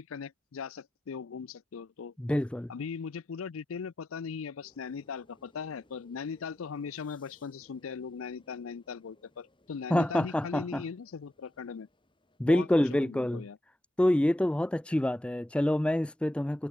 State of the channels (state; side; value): normal; both; correlation 0.87